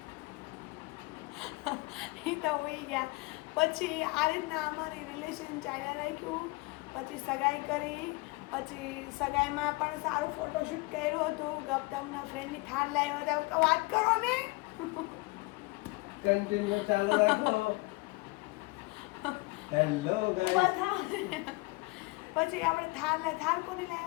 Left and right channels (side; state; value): right; quieter; 24.5 dB